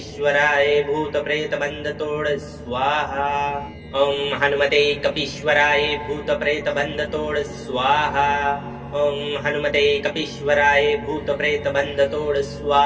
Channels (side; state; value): both; identical; correlation 1.00